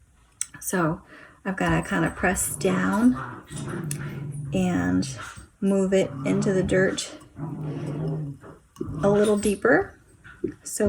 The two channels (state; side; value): identical; both; correlation 1.00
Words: So I've got to kind of press down and move it into the dirt a little deeper